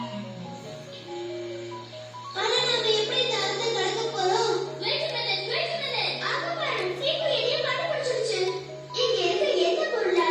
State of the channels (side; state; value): both; identical; correlation 1.00